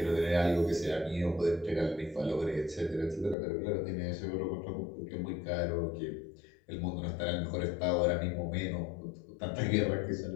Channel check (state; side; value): drops out; right; at 3.4 s